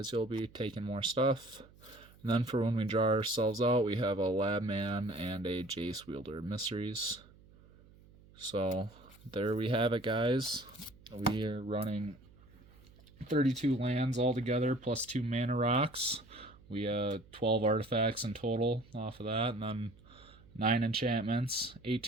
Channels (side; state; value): right; noise; hum, 25 dB below the sound